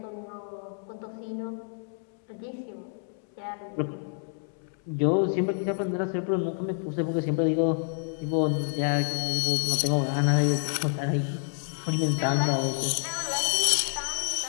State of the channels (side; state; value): right; silent; 59 dB below the other